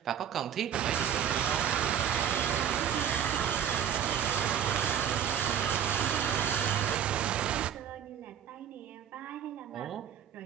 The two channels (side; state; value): left; quieter; 9.1 dB